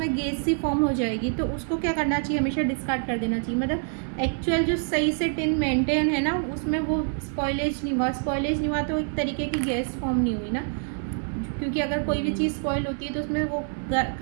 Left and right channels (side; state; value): left; silent; 61 dB below the other